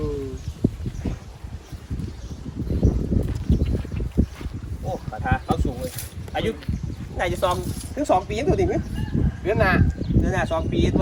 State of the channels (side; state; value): both; identical; correlation 1.00